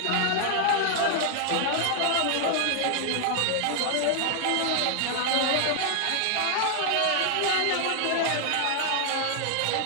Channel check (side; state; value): both; different; correlation 0.00